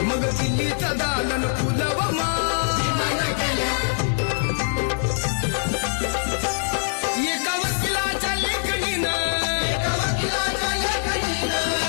मग दिल्लीचं दालन फुलं व माय. एका वकिलाच्या लेखणीनं,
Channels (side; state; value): right; silent; digital silence